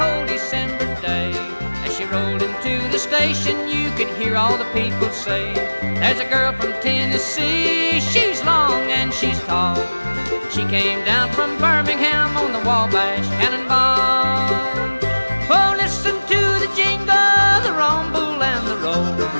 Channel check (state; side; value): inverted; both; correlation -1.00